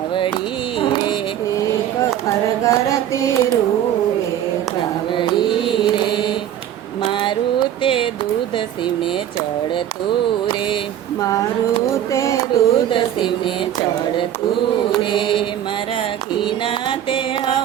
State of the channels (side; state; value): left; quieter; 10.9 dB